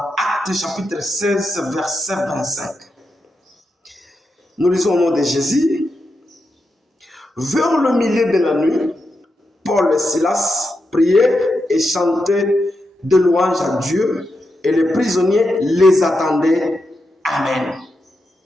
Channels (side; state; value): both; normal; correlation 0.86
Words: chapitre 16, verset 25. Nous lisons au nom de Jésus. Vers le milieu de la nuit, Paul et Silas priaient et chantaient de louanges à Dieu, et les prisonniers les attendaient. Amen.